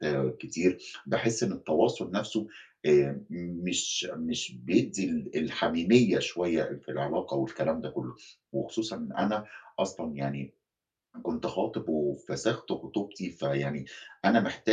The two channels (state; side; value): identical; both; correlation 1.00